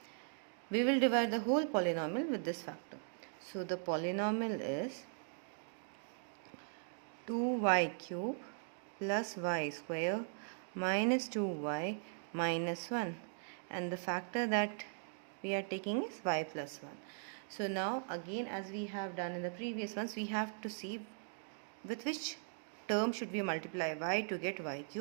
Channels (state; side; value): silent; left; digital silence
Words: We will divide the whole polynomial with this factor. So the polynomial is 2y cube plus y square minus 2y minus 1. And the factor that we are taking is y plus 1. So now again, as we have done in the previous ones, we have to see with which term should we multiply y to get y